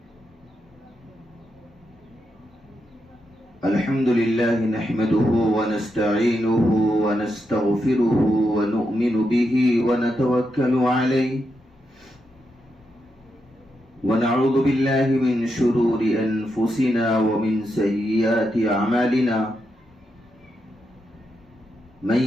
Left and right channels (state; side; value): normal; both; correlation 0.84